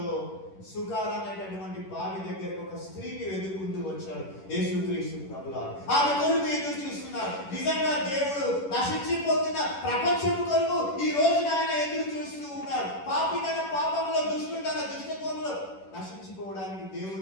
సుకార్ అనేటటువంటి బావి దగ్గరకు ఒక స్త్రీని వెతుకుంటూ వచ్చాడు యేసుక్రీస్తు ప్రభువు. ఆమె కొరకు ఎదురు చూస్తున్నారు. నిజంగా దేవుడు నశించిపోతున్న ప్రపంచం కొరకు ఈ రోజున ఆయన ఎదురు చూస్తూ ఉన్నారు. పాపి తన పాపంలో, దుష్టుడు తన దుష్టత్వంలో నశించిపోవడానికి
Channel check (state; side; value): late; right; 10 ms